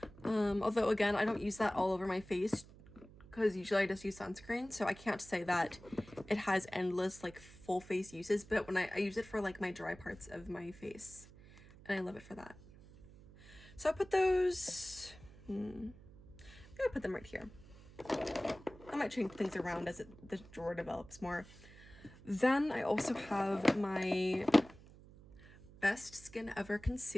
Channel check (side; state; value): right; noise; hum, 20 dB below the sound